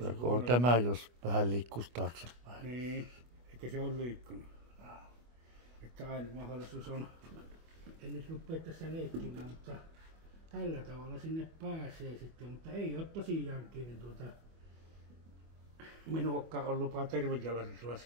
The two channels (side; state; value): left; late; 25 ms